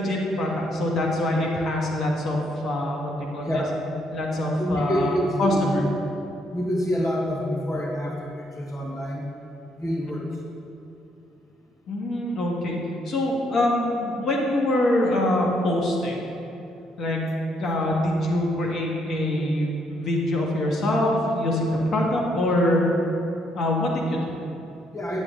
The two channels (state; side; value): normal; both; correlation 0.72